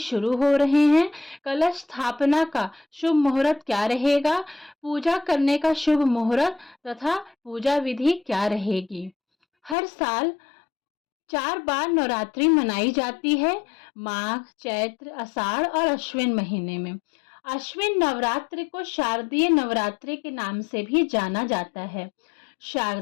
हो रहे हैं, कलश स्थापना का शुभ मुहूर्त क्या रहेगा, पूजा करने का शुभ मुहूर्त तथा पूजा विधि क्या रहेगी। हर साल 4 बार नवरात्रि मनाई जाती है, माघ, चैत्र, आषाढ़ और अश्विन महीने में। अश्विन नवरात्रि को शारदीय नवरात्रि के नाम से भी जाना जाता है।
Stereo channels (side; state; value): right; drops out; at 9.8 s